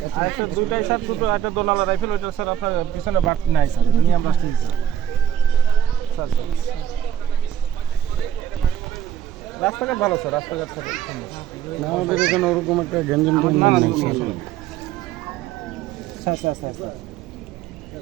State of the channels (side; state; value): left; quieter; 9.9 dB